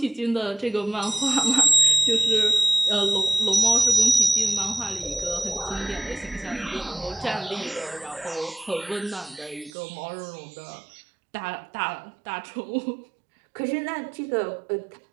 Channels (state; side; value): drops out; left; at 9.7 s